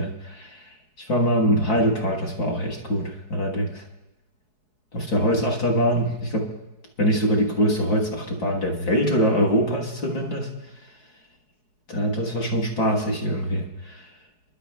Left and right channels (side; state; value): right; late; 4.7 ms